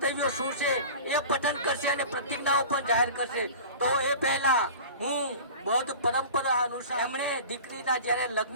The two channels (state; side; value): inverted; both; correlation -0.37